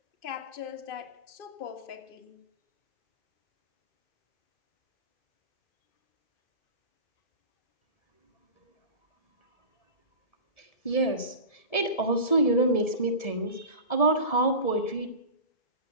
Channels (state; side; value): late; right; 1.7 ms